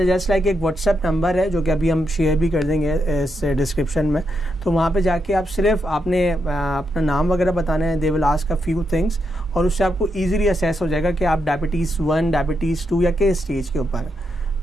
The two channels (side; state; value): both; normal; correlation 0.82